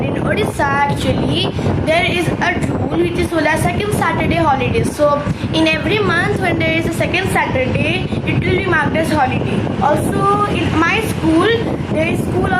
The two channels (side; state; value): both; identical; correlation 1.00